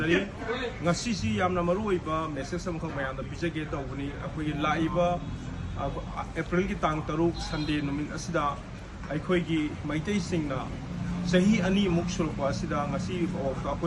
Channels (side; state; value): both; identical; correlation 1.00